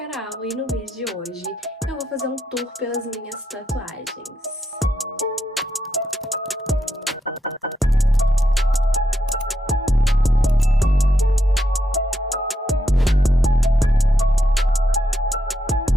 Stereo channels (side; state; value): both; normal; correlation 0.82